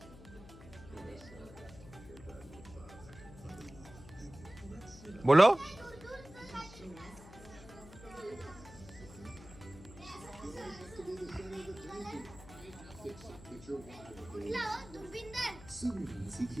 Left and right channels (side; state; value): left; noise; hum, 17 dB below the sound